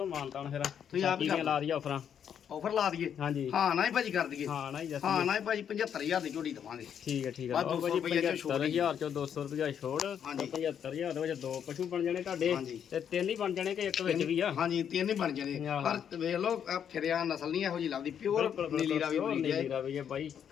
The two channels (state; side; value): quieter; right; 8.5 dB